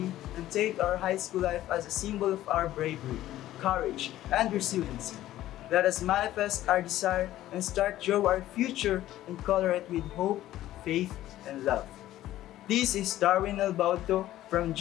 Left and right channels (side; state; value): right; quieter; 14.1 dB